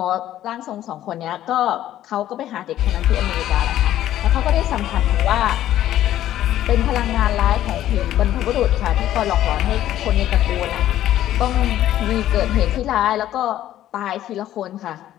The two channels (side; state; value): right; quieter; 12.7 dB